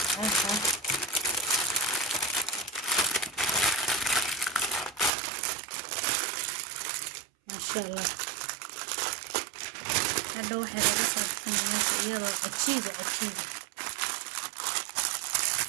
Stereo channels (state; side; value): drops out; left; at 5.1 s